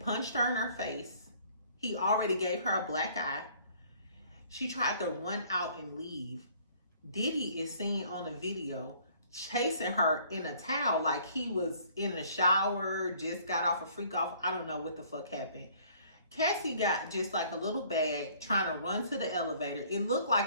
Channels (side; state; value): both; inverted; correlation -0.57